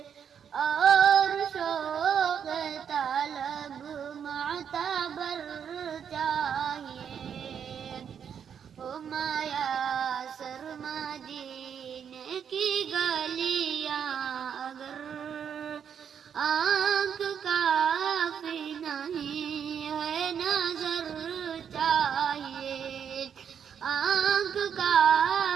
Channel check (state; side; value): quieter; left; 7.9 dB